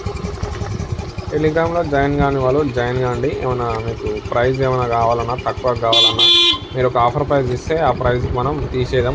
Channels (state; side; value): identical; both; correlation 1.00